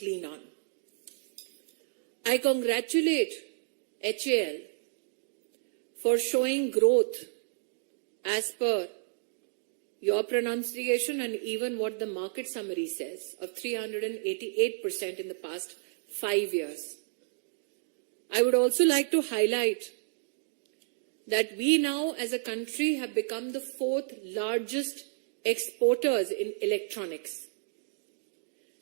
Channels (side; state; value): left; silent; digital silence